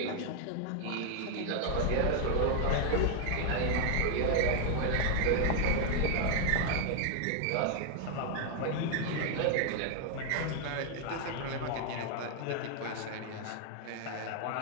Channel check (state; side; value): different; both; correlation 0.00